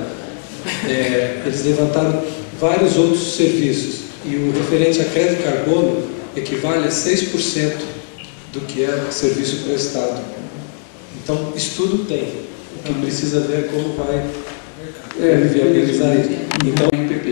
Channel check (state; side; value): silent; right; digital silence